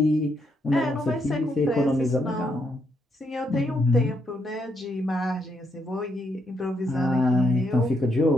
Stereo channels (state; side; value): normal; both; correlation 0.77